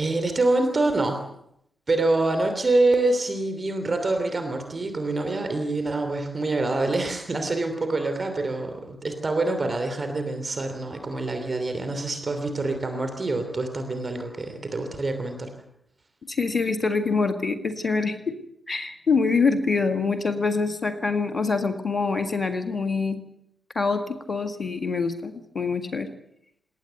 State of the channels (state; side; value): normal; both; correlation 0.84